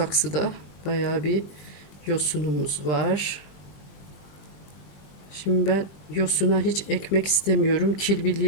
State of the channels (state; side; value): late; right; 20 ms